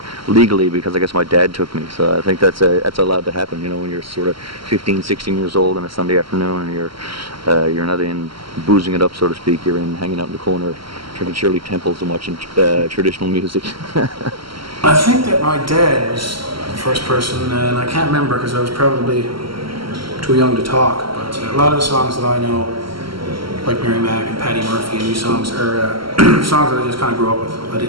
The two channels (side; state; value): left; late; 0.74 ms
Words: legally, because I guess my dad took me. So I think that's allowed to happen. When you're sort of 15, 16 years old on a Sunday afternoon, and you're not in boozing it up, so to speak. You're in hanging out in the corner, drinking Shirley Temples and watching traditional music. I think that my dad was the first person, and I can't remember because I was probably too young to talk. But a lot of the songs that I know, like Mary Mac and Paddy Murphy, and these songs are songs that I just kind of grew up with. I